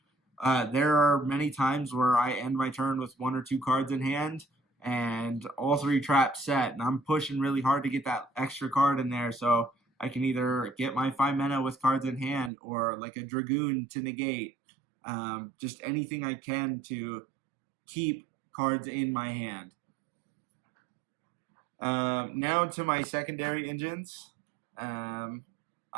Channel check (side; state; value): left; drops out; at 12.5 s